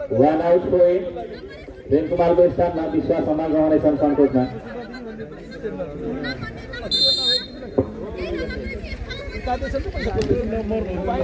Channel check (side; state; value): both; identical; correlation 1.00